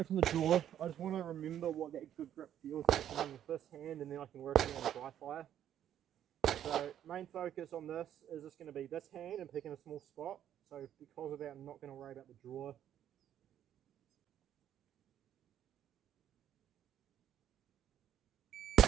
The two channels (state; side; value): quieter; left; 10.6 dB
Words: from the draw. I just want to remember what that good grip feels like with this hand, and then I can work on the dry fire. So main focus on this is just going to be this hand and picking a small spot. So because of that, I'm not going to worry about the draw.